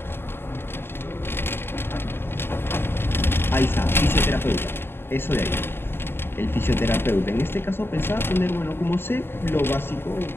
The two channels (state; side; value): late; right; 0.11 ms